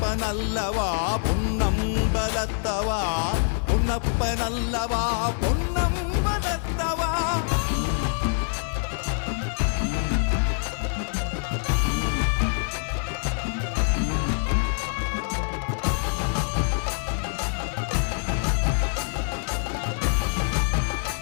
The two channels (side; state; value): right; silent; digital silence